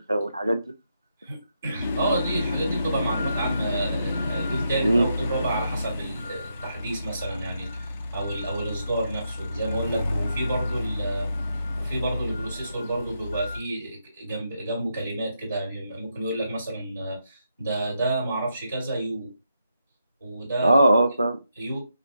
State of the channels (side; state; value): both; inverted; correlation -0.82